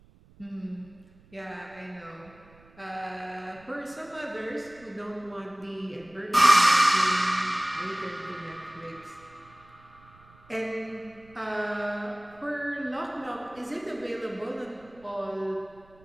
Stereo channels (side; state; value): right; noise; rumble, 26 dB below the sound